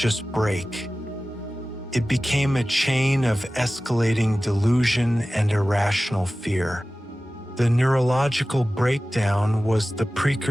break. It became a chain of escalating delusion and irrational fear. The neurological breakdown was the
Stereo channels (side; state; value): both; normal; correlation 0.96